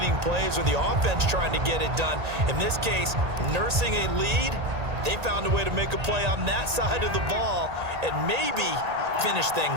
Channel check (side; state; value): left; late; 1.8 ms